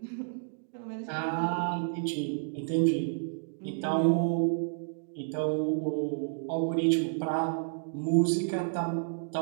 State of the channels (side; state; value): left; silent; digital silence